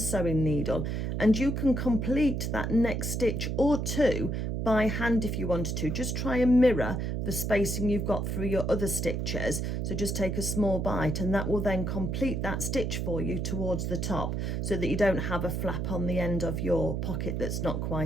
sewing needle, and you can complete that next stitch or two by hand if you wanted to. Just try and mirror the spacing you've got through your other stitches. So just take a small bite, and that will then complete that stitch for you towards the top, so that you don't have a flap on the end of your pocket that's not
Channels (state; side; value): noise; right; hum, 1 dB below the sound